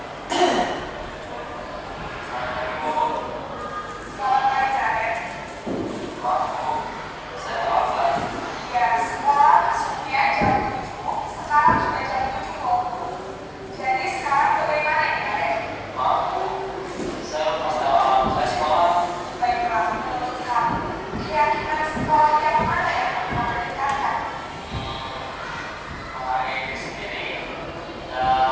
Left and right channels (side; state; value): both; identical; correlation 1.00